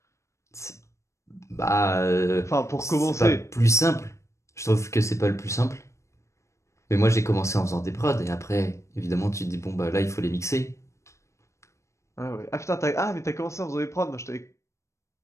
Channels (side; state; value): right; late; 0.14 ms